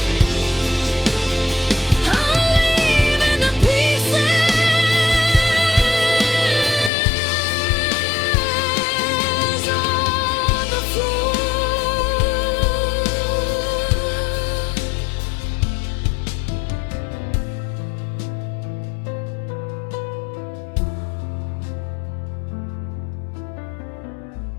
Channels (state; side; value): drops out; right; at 6.9 s